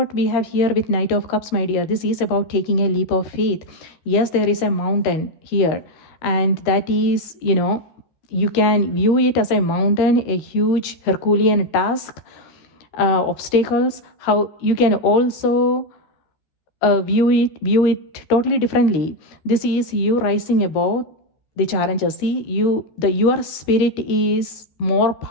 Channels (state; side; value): late; right; 14 ms